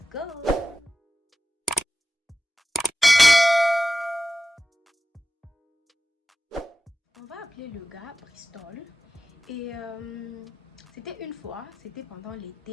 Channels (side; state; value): both; normal; correlation 0.95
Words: go. On va appeler le gars Bristol. Et c'était une fois, c'était pendant